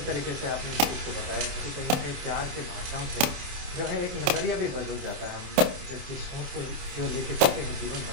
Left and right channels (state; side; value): late; left; 28 ms